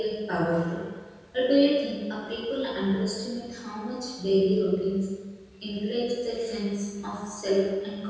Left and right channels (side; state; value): both; identical; correlation 1.00